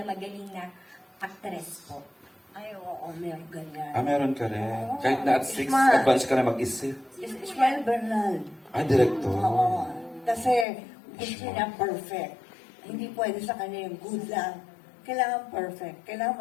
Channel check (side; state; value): right; drops out; at 10.7 s